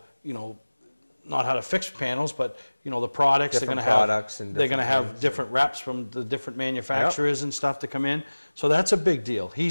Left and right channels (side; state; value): both; inverted; correlation -1.00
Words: you know, not how to fix panels, but, you know, the products. Different they're going to products have, and they're going to different have things. different reps from the different manufacturers and stuff to come in. So that's a big deal.